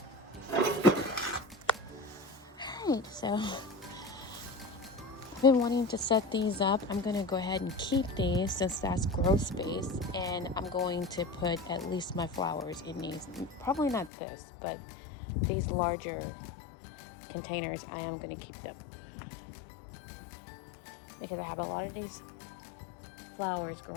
Alright, so I've been wanting to set these up. I'm gonna go ahead and keep these since that's grow space, and I'm going to put at least my flowers in these. Probably not this, but these larger containers, I am gonna keep them because I have a lot of these flowers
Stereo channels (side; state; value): right; drops out; at 14.1 s